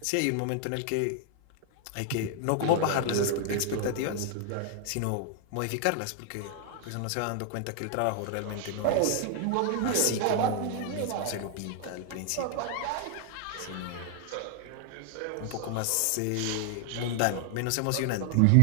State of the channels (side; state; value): both; different; correlation 0.00